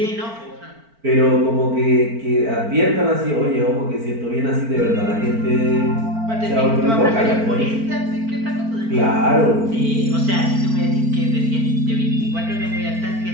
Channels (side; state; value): left; late; 4.4 ms